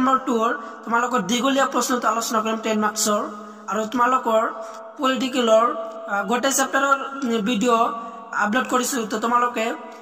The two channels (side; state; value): both; identical; correlation 1.00